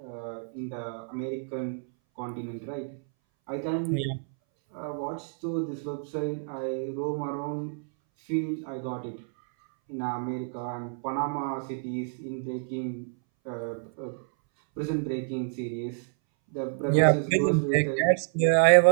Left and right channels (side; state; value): left; silent; 59 dB below the other